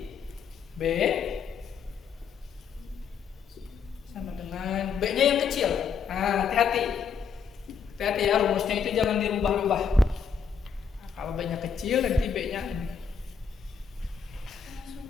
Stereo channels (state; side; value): quieter; right; 6.4 dB